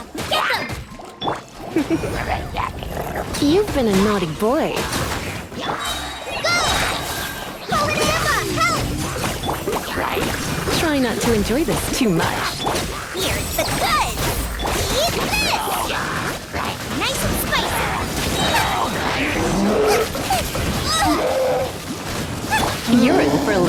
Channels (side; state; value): both; identical; correlation 1.00